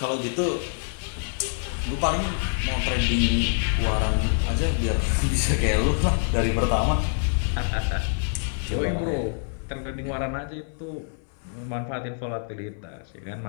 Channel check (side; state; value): right; silent; 61 dB below the other